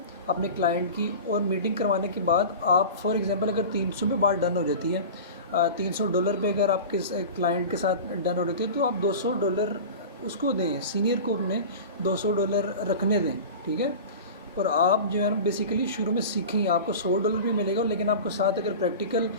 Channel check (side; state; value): both; inverted; correlation -0.33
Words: अपने क्लाइंट की। और मीटिंग करवाने के बाद आप फॉर एग्ज़ाम्पल अगर 300 पे बात डन हो जाती है, $300 पे अगर आपके क्लाइंट के साथ डन हो रही है तो आप $200 उसको दें, सीनियर को अपने $200 रखने दें, ठीक है। और आप जो है ना बेसिकली शुरू में सीखेंगे, आपको $100 भी मिलेगा, लेकिन आपको साथ अगर प्रैक्टिकल